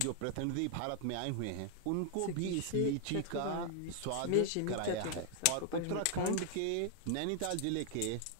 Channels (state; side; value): different; both; correlation 0.00